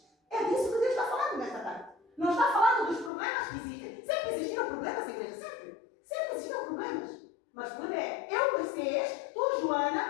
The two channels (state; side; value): drops out; right; at 3.1 s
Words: É disso que Deus está falando nesta tarde. Não está falando dos problemas que existem. Sempre existiram problemas, igreja, sempre. Sempre existiram problemas. Mas o problema é, eu, Mercedes, tu,